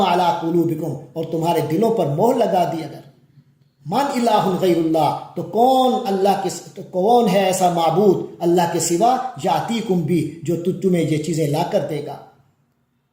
علی قلوبکم، اور تمہارے دلوں پر مہر لگا دی، اگر من الہ غیر اللہ، تو کون ہے ایسا معبود اللہ کے سوا، یاتیکم بھی، جو تمہیں یہ چیزیں لا کر دے گا،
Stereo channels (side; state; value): both; identical; correlation 1.00